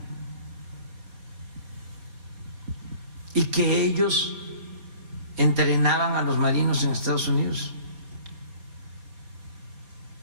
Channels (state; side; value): late; left; 4.4 ms